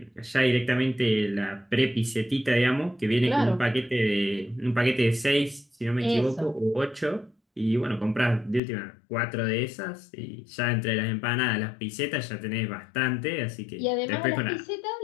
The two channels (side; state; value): right; drops out; at 8.6 s